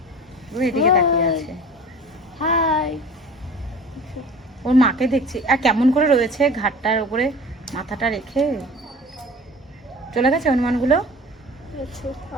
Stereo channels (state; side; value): normal; both; correlation 0.41